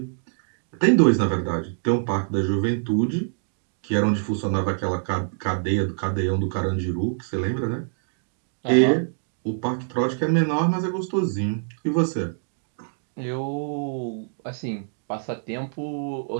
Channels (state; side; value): silent; left; digital silence